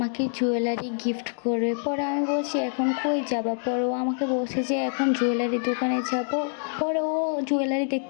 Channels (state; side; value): silent; right; digital silence